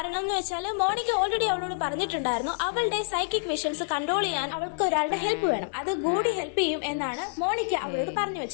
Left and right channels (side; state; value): right; silent; digital silence